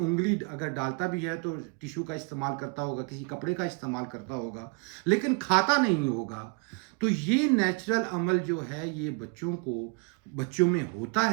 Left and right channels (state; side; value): quieter; left; 33.1 dB